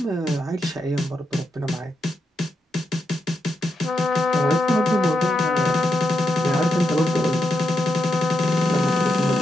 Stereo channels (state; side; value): normal; both; correlation 0.84